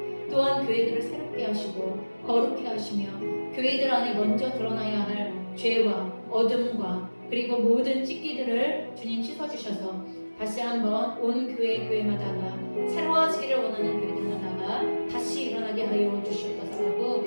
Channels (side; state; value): both; inverted; correlation -1.00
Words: 또한 교회들을 새롭게 하시고 거룩해 하시며 교회들 안에 먼저 드러나야 할 죄와 어둠과 그리고 모든 찢기들을 주님 씻어주셔서 다시 한번 온 교회마다가 새로워지기를 원하는 교회들마다가 다시 일어나게 하여 주시옵소서라고